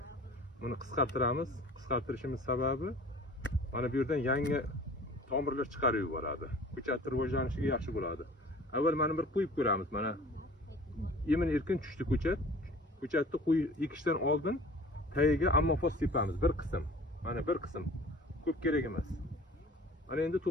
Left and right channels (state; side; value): normal; both; correlation 0.45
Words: buni qisqartiramiz. Qisqartirishimiz sababi mana bu yerdan yangi tomirlar chiqarib yuboradi. Ko'chatning rivojlanishiga yaxshi bo'ladi. Avval mana bir qo'yib ko'ramiz. Mana yemin erkin tushdi ko'chat. Ko'chatni ekishdan oldin tagiga ammofos sepamiz bir qism. Mana bir qism. Ko'p kerak emas. Mana endi